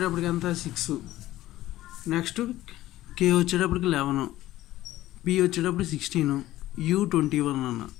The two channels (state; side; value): quieter; right; 15.3 dB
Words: ఎంత 6, నెక్స్ట్ కే వచ్చేటప్పటికి 11, పి వచ్చేటప్పుడు 16, యూ 21 అన్న.